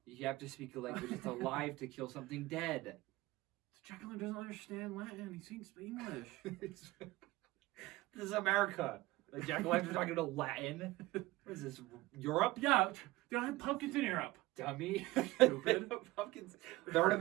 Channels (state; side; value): quieter; left; 19.5 dB